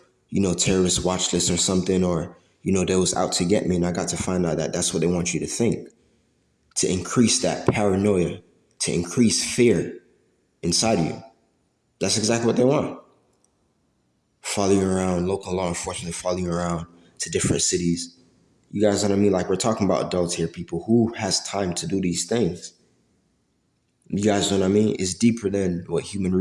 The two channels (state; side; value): identical; both; correlation 1.00